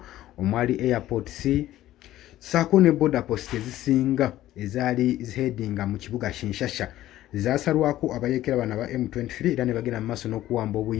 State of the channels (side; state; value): right; quieter; 14.3 dB